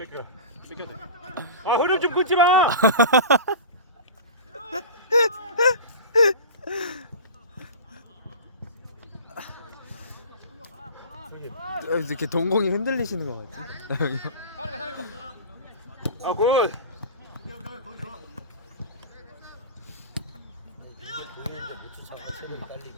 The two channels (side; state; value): both; inverted; correlation -0.33